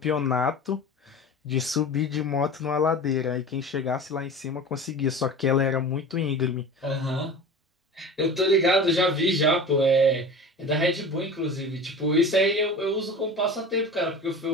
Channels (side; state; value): both; normal; correlation 0.35